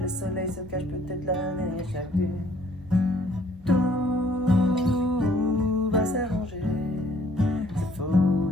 soleil se cache peut-être là derrière chaque dune. Tout va s'arranger. C'est faux,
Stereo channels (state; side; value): normal; both; correlation 0.61